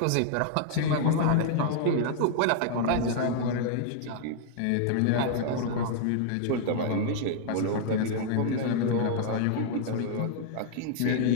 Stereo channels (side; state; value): both; different; correlation -0.01